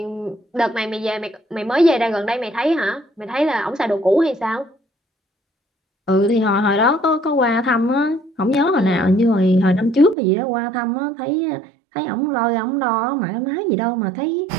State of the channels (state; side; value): drops out; left; at 10.2 s